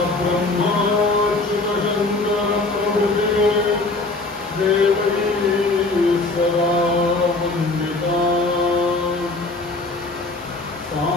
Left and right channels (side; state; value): right; quieter; 3.2 dB